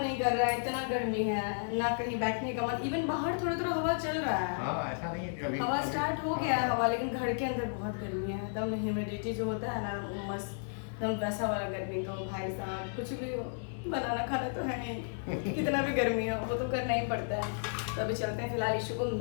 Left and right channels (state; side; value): silent; right; 56 dB below the other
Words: कर रहा है, इतना गर्मी है ना, कहीं बैठने का मन। इवन बाहर थोड़ा थोड़ा हवा चल रहा है, हाँ ऐसा नहीं अभी हवा स्टार्ट हो गया है हाँ। हवा, लेकिन घर के अंदर बहुत गर्मी है, एकदम ह्यूमिडिटी जो होता है ना, मस्त एकदम वैसा वाला गर्मी। तो भाई साहब कुछ भी हो, बनाना खाना तो है नहीं, कितना भी गर्मी हो वो तो करना ही पड़ता है। तो अभी चलते हैं फिलहाल ईशु को